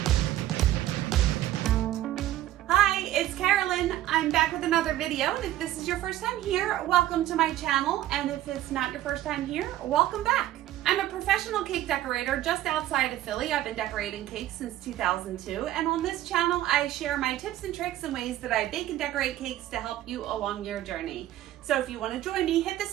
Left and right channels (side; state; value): left; quieter; 13.8 dB